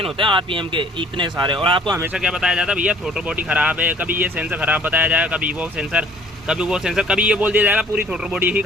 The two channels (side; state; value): both; normal; correlation 0.55